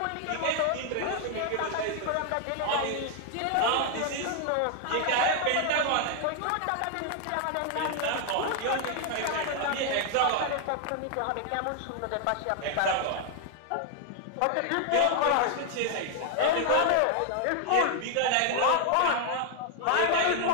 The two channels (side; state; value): both; different; correlation 0.00